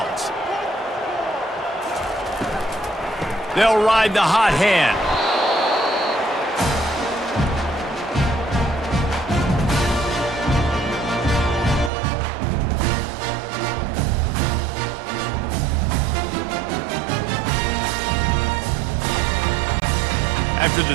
They'll ride the hot hand. After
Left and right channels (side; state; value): left; drops out; at 11.9 s